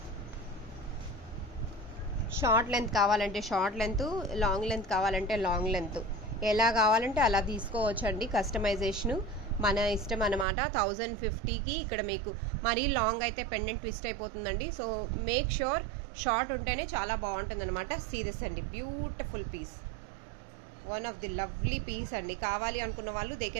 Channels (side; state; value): left; drops out; at 10.5 s